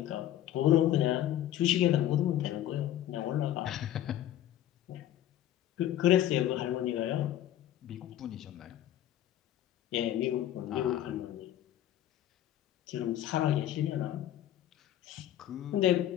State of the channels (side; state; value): right; quieter; 12.2 dB